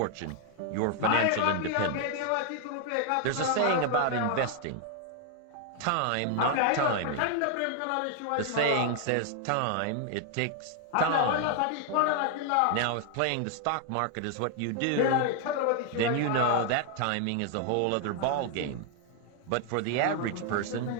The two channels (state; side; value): different; both; correlation 0.00